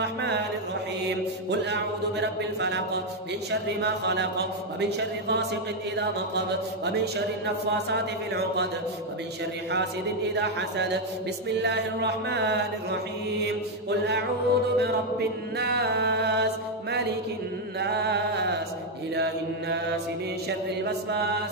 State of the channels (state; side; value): normal; both; correlation 0.03